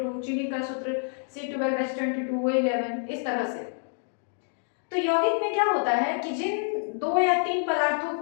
चीनी का सूत्र C12H22, O11, इस तरह से। तो यौगिक में क्या होता है कि जिन 2 या 3 पदार्थों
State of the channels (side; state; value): right; silent; 57 dB below the other